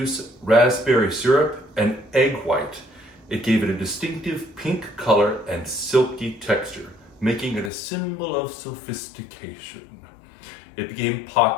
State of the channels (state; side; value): drops out; right; at 7.7 s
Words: raspberry syrup, and egg white. It gave it a distinctive pink color and silky texture, making it a symbol of sophistication. It became